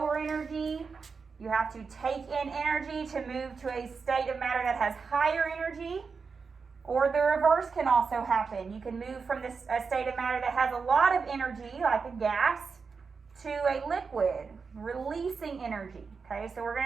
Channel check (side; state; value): left; quieter; 5.1 dB